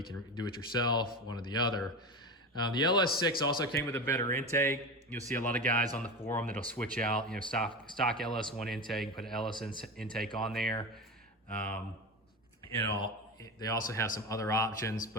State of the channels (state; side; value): normal; both; correlation 0.24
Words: can do it yourself, one or the other. The LS6 also came with a better intake. You'll see a lot of guys on the forum that'll switch out, stock LS1 intake, put an LS intake on there. They also have some other options,